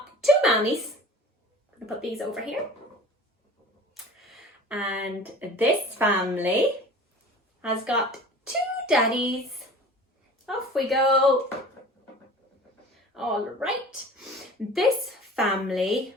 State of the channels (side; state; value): both; normal; correlation 0.41